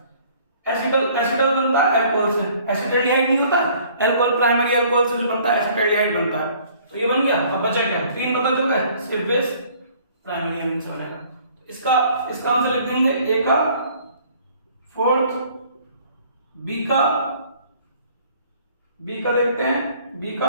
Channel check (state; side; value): inverted; both; correlation -0.56